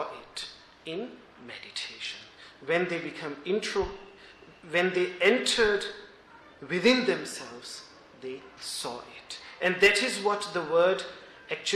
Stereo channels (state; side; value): identical; both; correlation 1.00